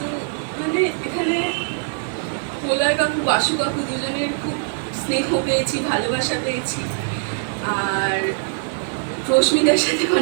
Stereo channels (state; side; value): silent; left; digital silence